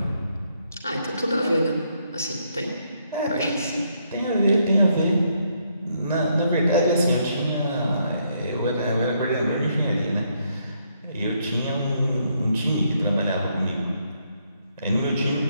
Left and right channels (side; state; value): both; inverted; correlation -0.74